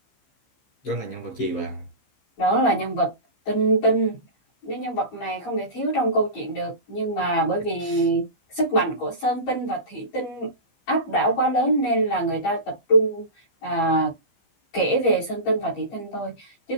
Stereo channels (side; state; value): right; late; 15 ms